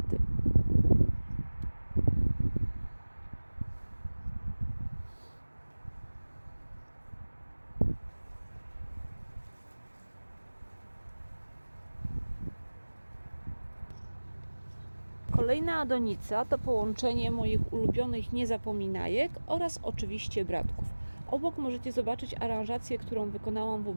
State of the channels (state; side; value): inverted; both; correlation -1.00